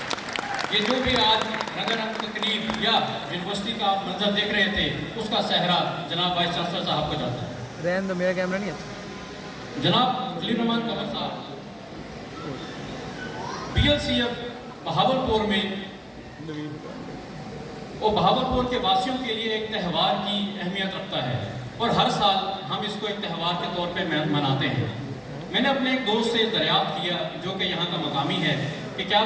یہ جو بھی آج رنگا تقریب یا یونیورسٹی کا آپ منظر دیکھ رہے تھے اس کا صحرا جناب وائس چانسلر صاحب کو جاتا ہے. رہن دو میرا کیمرہ نہیں ہے. جناب خلیل الرحمان قمر صاحب BLCF بہاولپور میں وہ بہاولپور کے واسیوں کے لیے ایک تہوار کی اہمیت رکھتا ہے اور ہر سال ہم اس کو ایک تہوار کے طور پہ مناتے ہیں. میں نے اپنے ایک دوست سے دریافت کیا جو کہ یہاں کا مقامی ہے کہ کیا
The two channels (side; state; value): both; identical; correlation 1.00